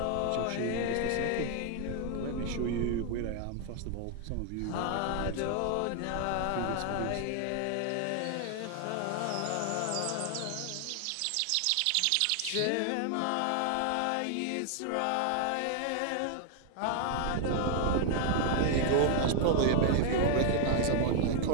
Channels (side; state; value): both; different; correlation 0.00